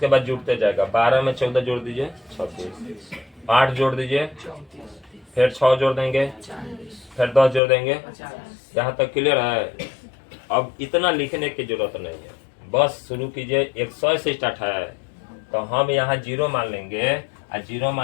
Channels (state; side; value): drops out; right; at 7.6 s